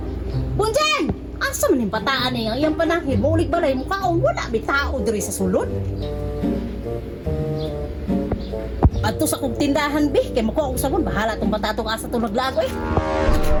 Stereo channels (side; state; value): both; identical; correlation 1.00